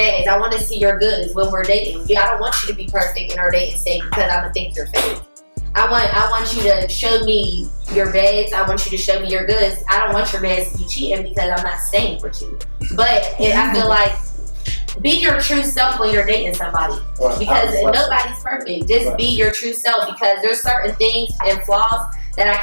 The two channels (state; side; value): inverted; both; correlation -1.00